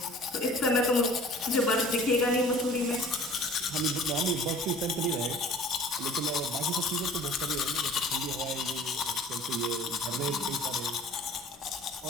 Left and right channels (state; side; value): normal; both; correlation 0.48